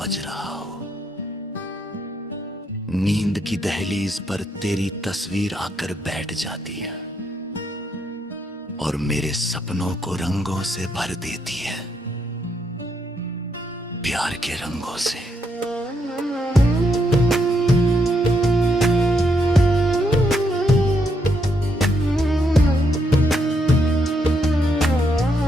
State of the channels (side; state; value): both; normal; correlation 0.77